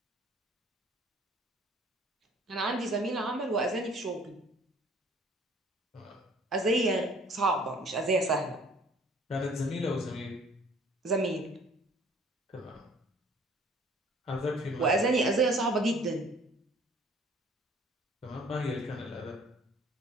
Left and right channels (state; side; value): normal; both; correlation 0.54